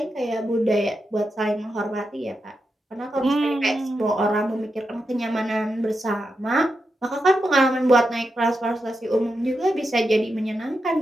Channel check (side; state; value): both; normal; correlation 0.87